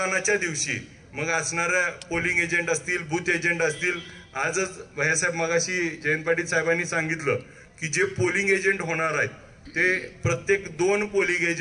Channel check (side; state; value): both; identical; correlation 1.00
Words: दिवशी मग असणाऱ्या पोलिंग एजंट असतील, बूथ एजंट असतील. आजच भैयासाहेब मगाशी जयंत पाटील साहेबांनी सांगितलं की जे पोलिंग एजंट होणार आहेत ते प्रत्येक 2 पोलिंग